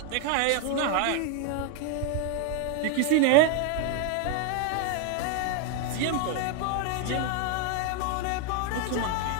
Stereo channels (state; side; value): different; both; correlation 0.01